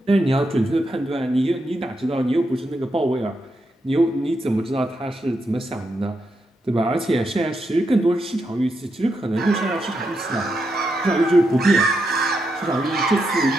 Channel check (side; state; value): both; normal; correlation 0.83